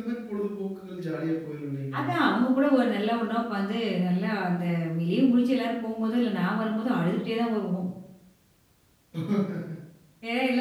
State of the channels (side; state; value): both; identical; correlation 1.00